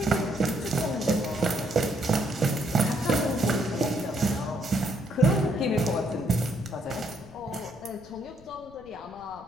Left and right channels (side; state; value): left; noise; rumble, 24 dB below the sound